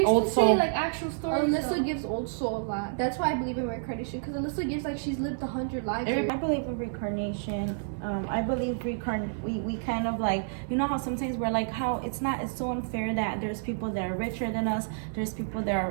old to soul. say like actual stories. Alyssa gives old soul a lot. That's why I believe in reincarnation, because Alyssa gives like she's lived 100 lives. I believe in reincarnation. I believe we kind of like, you know how sometimes we're like, how it's so unfair that there's people that are richer than us, there's people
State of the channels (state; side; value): silent; left; digital silence